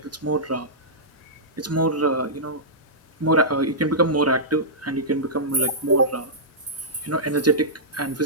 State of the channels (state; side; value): normal; both; correlation -0.14